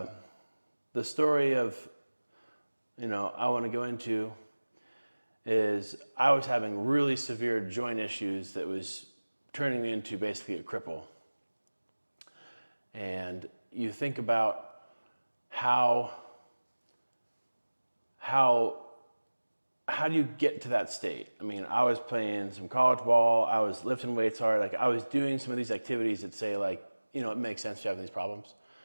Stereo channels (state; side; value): inverted; both; correlation -1.00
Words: The story of, I want to go into is I was having really severe joint issues that was turning me into basically a cripple. And you think about how do you get to that state? I mean, I was playing some college ball, I was lifting weights hard, like I was doing some of these activities that say like, it makes sense to have these problems.